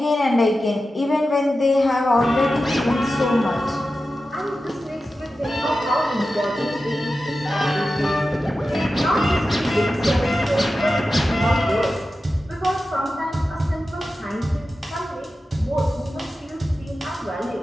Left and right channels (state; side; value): normal; both; correlation 0.93